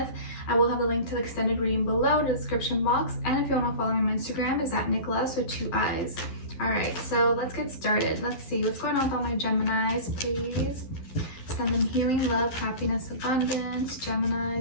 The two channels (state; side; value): late; right; 11 ms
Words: I will have a link to the extended reading below in the description box, and if you want to follow me on Instagram, it's at Nicloves with 2 eyes. Alright, so let's get started. Let's see what's going on with all my Geminis, please. Send them healing, love, happiness, abundance.